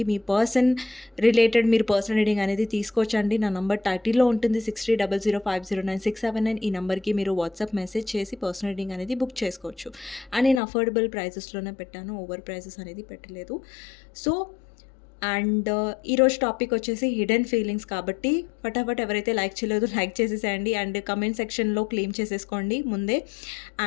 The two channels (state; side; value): drops out; right; at 10.6 s